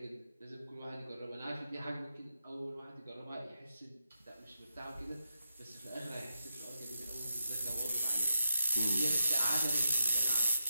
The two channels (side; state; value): both; inverted; correlation -0.86